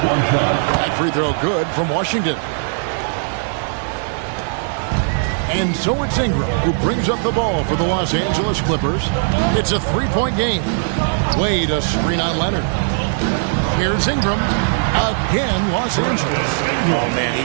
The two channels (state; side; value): silent; left; 67 dB below the other